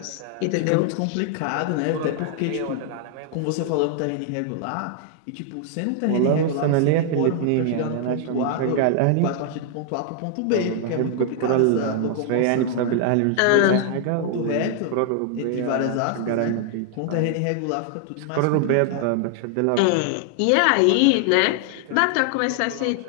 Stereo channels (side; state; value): both; different; correlation 0.00